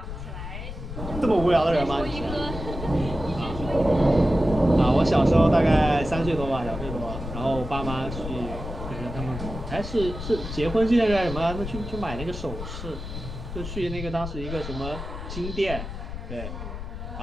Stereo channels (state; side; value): noise; left; rumble, 8 dB below the sound